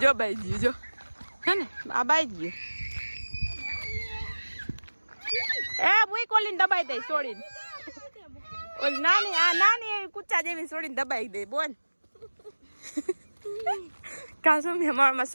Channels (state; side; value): inverted; both; correlation -1.00